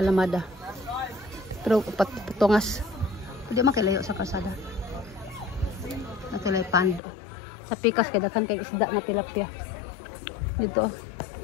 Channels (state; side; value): drops out; right; at 7.0 s